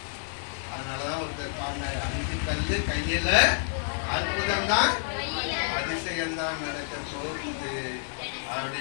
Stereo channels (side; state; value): right; silent; digital silence